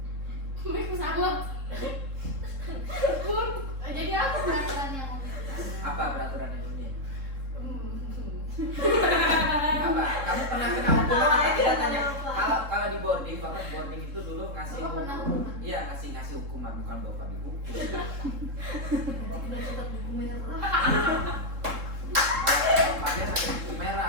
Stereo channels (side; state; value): left; late; 3.7 ms